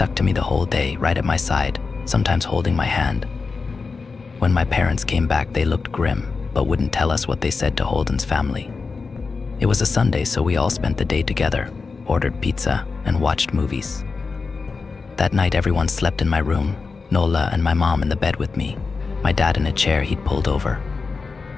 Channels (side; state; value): right; quieter; 4.5 dB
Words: to me the whole day, right at my side, sometimes holding my hand. When my parents came back, they looked grim, but wouldn't tell us what they said to Holden's family. It was a Sunday, so we all spent the day together, ordered pizza, and watched movies. That night, everyone slept in my room, Nola and my mom in the bed with me, my dad in a chair he'd pulled over.